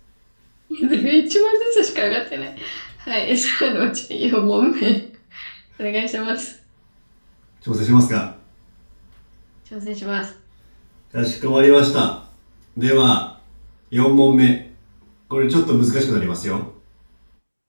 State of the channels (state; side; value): inverted; both; correlation -1.00